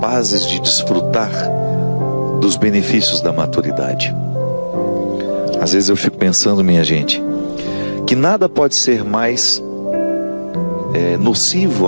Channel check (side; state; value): both; inverted; correlation -1.00